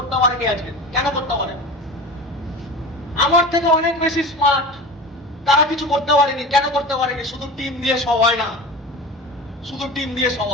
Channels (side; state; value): both; normal; correlation 0.32